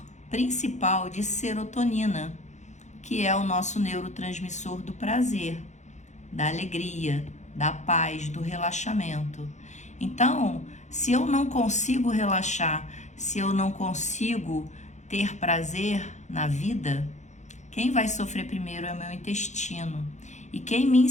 principal de serotonina, que é o nosso neurotransmissor do prazer, da alegria, da paz, do relaxamento. Então, se eu não consigo relaxar, se eu não consigo ter prazer na vida, quem vai sofrer primeiro é o meu intestino. E quem me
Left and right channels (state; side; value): late; right; 0.34 ms